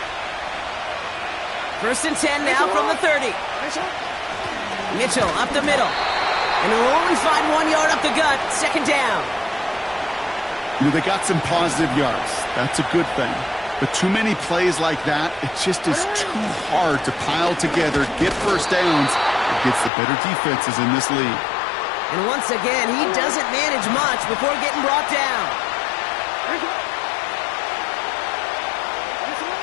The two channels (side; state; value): right; drops out; at 19.9 s